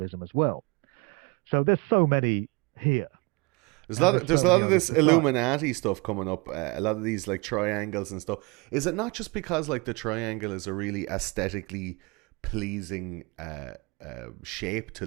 as well. So there's so many here, and there's There's so a lot many of others this besides. Illuminati stuff coming up. A lot of these like triangles and stuff. Is it not just because like the triangle is a really aesthetically pleasing shape to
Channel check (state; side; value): quieter; left; 28.1 dB